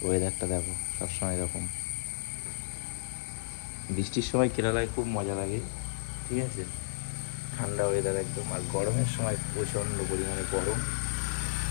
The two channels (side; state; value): right; silent; digital silence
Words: ওয়েদারটা দেখো সবসময় এরকম। বৃষ্টির সময় কেরালায় খুব মজা লাগে, ঠিক আছে। ঠান্ডা ওয়েদার একদম। আর গরমের সময় প্রচণ্ড পরিমাণে গরম।